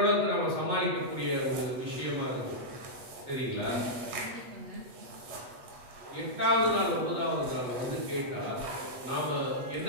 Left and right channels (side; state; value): left; late; 8.1 ms